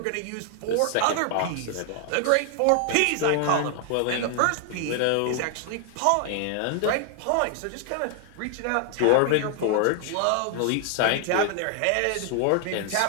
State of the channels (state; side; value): different; both; correlation 0.00